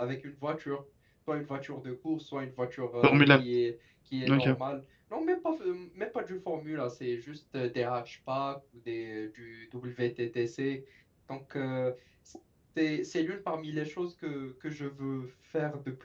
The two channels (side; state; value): both; identical; correlation 1.00